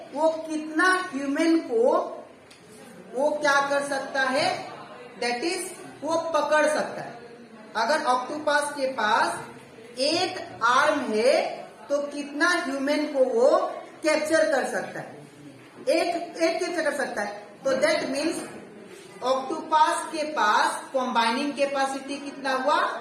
वो कितना ह्यूमन को वो क्या कर सकता है, दैट इज वो पकड़ सकता है। अगर ऑक्टोपस के पास 8 आर्म है तो कितना ह्यूमन को वो कैप्चर कर सकता है, एक कैप्चर कर सकता है। तो दैट मीन्स ऑक्टोपस के पास कॉम्बाइनिंग कैपेसिटी कितना हुआ,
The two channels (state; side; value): identical; both; correlation 1.00